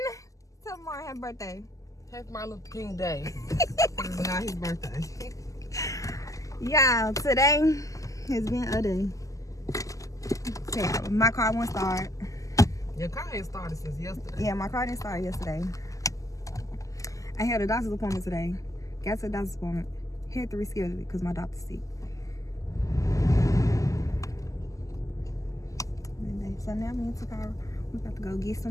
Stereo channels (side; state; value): right; late; 0.16 ms